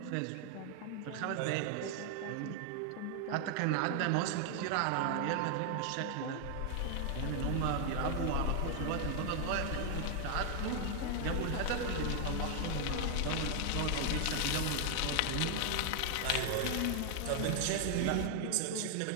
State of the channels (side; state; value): both; different; correlation 0.00